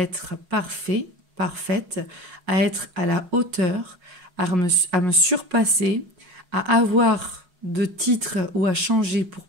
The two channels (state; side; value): late; left; 5.5 ms